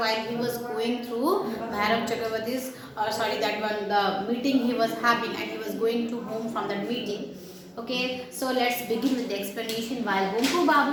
he was going through Bhairav Chakravarti's, that one, the meeting he was having, and he was going to home from that meeting. Okay, so let's begin with the explanation. While Bonku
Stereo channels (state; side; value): identical; both; correlation 1.00